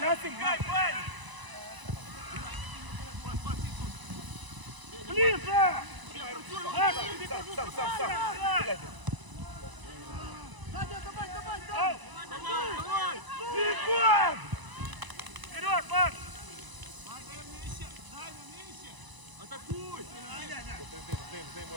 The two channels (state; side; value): late; left; 1.0 ms